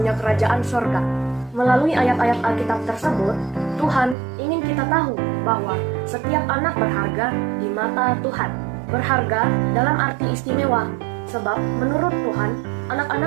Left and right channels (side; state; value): left; drops out; at 4.2 s